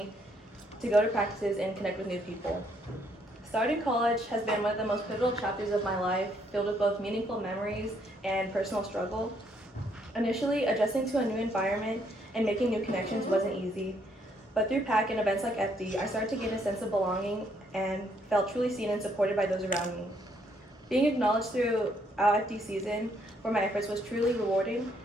to go to practices and connect with new people. Starting college has been one of the most pivotal chapters of my life, filled with both meaningful memories and personal struggle. Initially, adjusting to a new environment and making new connections wasn't easy, but through PAC and events like FD, I started to gain a sense of belonging and felt truly seen and supported by those around me. Being acknowledged throughout FD season for my efforts was truly rewarding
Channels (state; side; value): normal; both; correlation 0.70